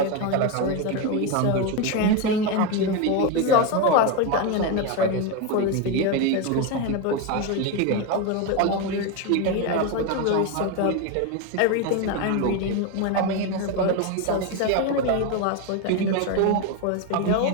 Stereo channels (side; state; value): both; different; correlation 0.03